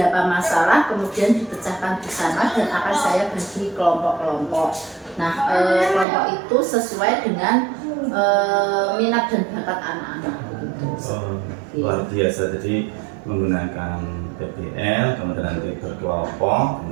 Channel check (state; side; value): drops out; left; at 6.1 s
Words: masalah, kemudian dipecahkan di sana dan akan saya bagi kelompok-kelompok. Nah, kelompok itu sesuai dengan minat dan bakat anak-anak. Luar biasa. Jadi menggunakan PBL, kemudian nanti berkelompok,